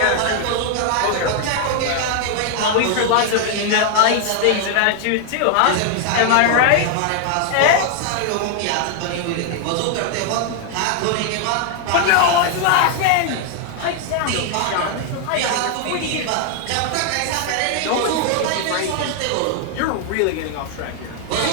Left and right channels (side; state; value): both; different; correlation 0.00